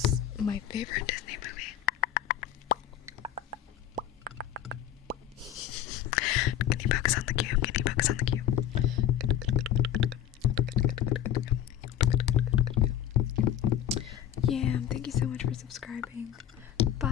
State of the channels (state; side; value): quieter; right; 10.8 dB